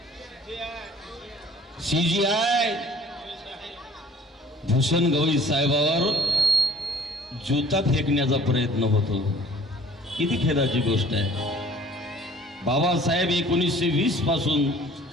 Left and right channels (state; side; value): normal; both; correlation 0.51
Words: CGI भूषण गवई साहेबावर जुता फेकण्याचा प्रयत्न होतो. किती खेदाची गोष्ट आहे. बाबासाहेब 1920 पासून